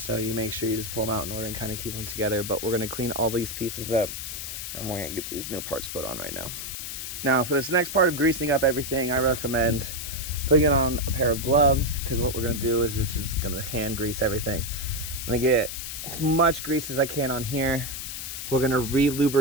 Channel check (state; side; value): noise; left; hiss, 7 dB below the sound